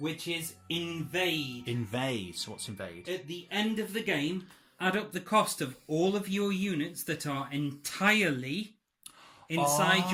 is invade. Invade. So what's invade? At the end of the game, add up the cost of all of your units that are entirely inside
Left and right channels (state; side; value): identical; both; correlation 1.00